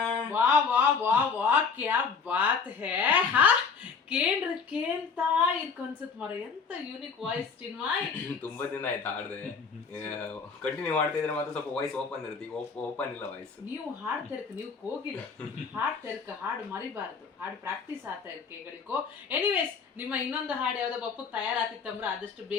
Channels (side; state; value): right; quieter; 5.5 dB